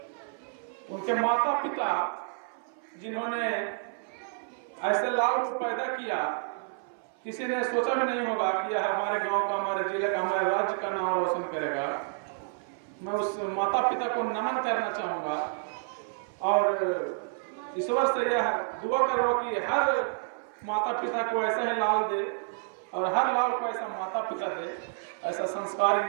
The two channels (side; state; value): left; silent; 57 dB below the other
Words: उनके माता पिता जिन्होंने ऐसे लाल को पैदा किया, किसी ने सोचा भी नहीं होगा कि यह हमारे गांव का, हमारे जिले का, हमारे राज्य का नाम रोशन करेगा। मैं उस माता पिता को नमन करना चाहूँगा और ईश्वर से यह दुआ करो कि हर माता पिता को ऐसा ही लाल दे और हर लाल को ऐसा माता पिता दे, ऐसा संस्कारी